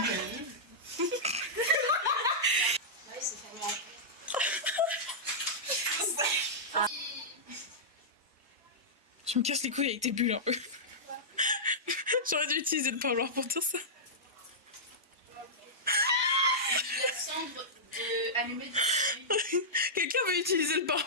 Tu me casses les couilles avec tes bulles un peu. J'aurais dû utiliser le parloir pour dire ça. La cendre de allumée de Quelqu'un veut utiliser le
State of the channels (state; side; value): normal; both; correlation -0.13